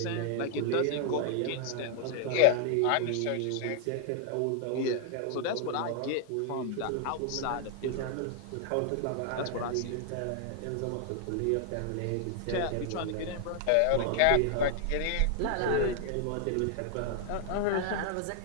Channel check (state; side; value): different; both; correlation 0.00